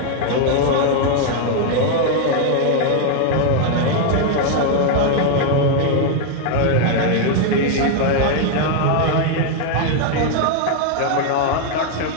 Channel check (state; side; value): different; both; correlation 0.00